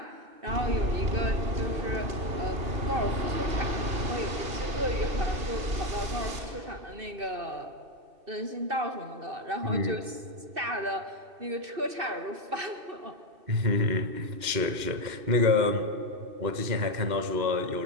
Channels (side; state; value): left; late; 2.6 ms